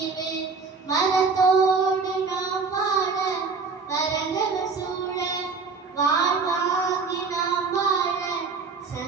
மரத்தோடு நாம் வாழ மரங்கள் சூழ வாழ்வாங்கி நாம் வாழ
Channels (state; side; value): quieter; left; 4.7 dB